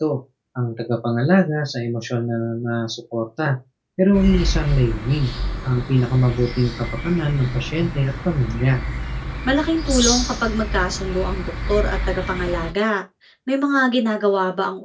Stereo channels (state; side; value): identical; both; correlation 1.00